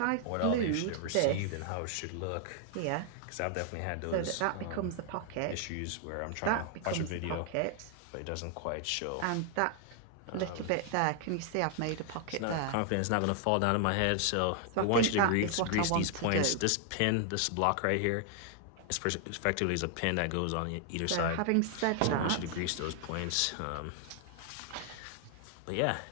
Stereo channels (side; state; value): both; different; correlation 0.00